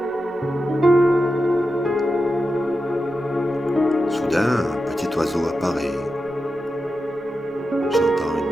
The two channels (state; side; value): normal; both; correlation 0.89